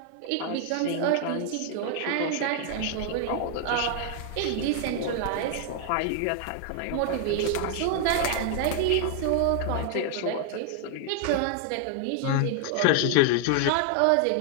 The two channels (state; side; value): different; both; correlation 0.00